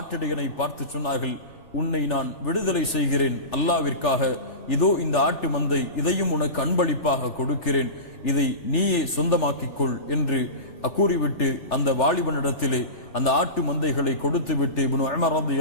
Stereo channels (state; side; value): late; right; 3.4 ms